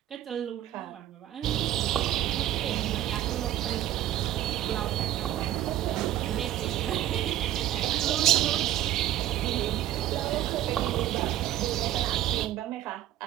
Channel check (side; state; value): left; quieter; 12.9 dB